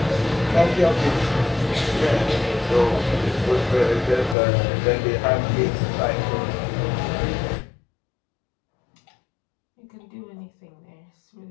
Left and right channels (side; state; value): right; drops out; at 4.4 s